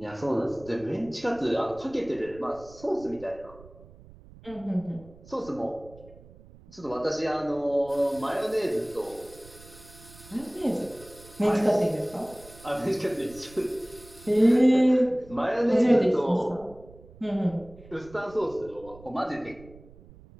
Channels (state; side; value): noise; right; rumble, 21 dB below the sound